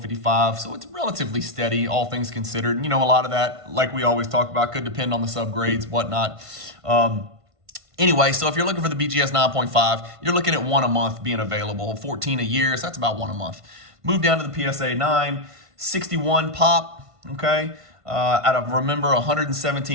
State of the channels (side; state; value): left; late; 1.5 ms